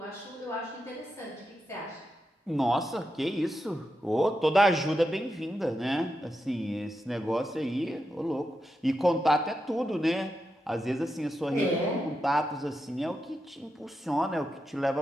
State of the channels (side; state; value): both; normal; correlation 0.87